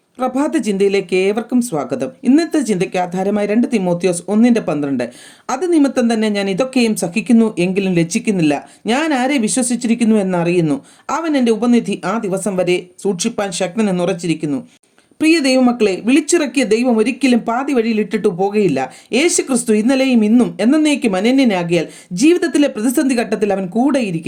പ്രഭാത ചിന്തയിലേക്ക് ഏവർക്കും സ്വാഗതം. ഇന്നത്തെ ചിന്തയ്ക്ക് ആധാരമായി 2 തിമോത്തിയോസ് 1:12. അത് നിമിത്തം തന്നെ ഞാൻ ഇതൊക്കെയും സഹിക്കുന്നു, എങ്കിലും ലജ്ജിക്കുന്നില്ല. ഞാൻ ആരെ വിശ്വസിച്ചിരിക്കുന്നു എന്നറിയുന്നു. അവൻ എൻ്റെ ഉപനിധി ആ ദിവസം വരെ സൂക്ഷിപ്പാൻ ശക്തനെന്ന് ഉറച്ചിരിക്കുന്നു. പ്രിയ ദൈവമക്കളെ, വിളിച്ചിറക്കിയ ദൈവം ഒരിക്കലും പാതി വഴിയിൽ ഇട്ടിട്ടു പോകുകയില്ല. യേശു ക്രിസ്തു ഇന്നലെയും ഇന്നും എന്നേക്കും അനന്യനാകിയാൽ ജീവിതത്തിലെ പ്രതിസന്ധി ഘട്ടത്തിൽ അവൻ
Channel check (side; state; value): both; identical; correlation 1.00